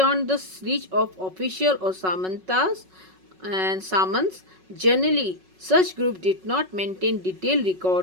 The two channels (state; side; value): late; left; 5.4 ms